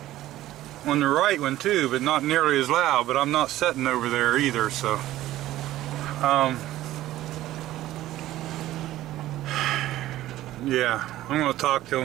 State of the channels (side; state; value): left; quieter; 14.8 dB